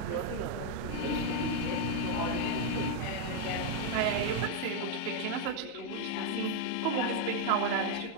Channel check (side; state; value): both; different; correlation 0.01